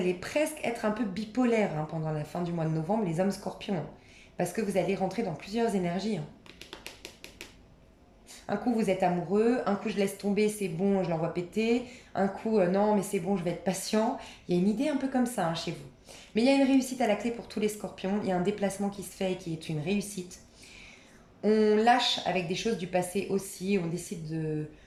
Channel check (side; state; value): both; identical; correlation 1.00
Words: presque être un peu bipolaire, hein, pendant la fin du mois de novembre, les hommes scorpions, hein. Parce que vous allez rentrer dans plusieurs énergies, hein. Un coup, vous êtes amoureux. Un coup, je laisse tomber, c'est bon, je l'envoie péter. Un coup, non, mais c'est bon, je vais être patient. Il y a une idée un peu comme ça, hein, chez vous. Mais il y a une réussite à la clé pour tous les scorpions. Il y a un déplacement qui se fait et qui est une réussite. On lâche avec des choses du passé aussi. On décide